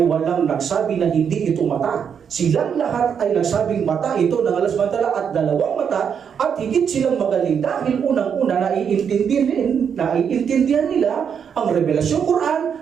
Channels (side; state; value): left; quieter; 7.4 dB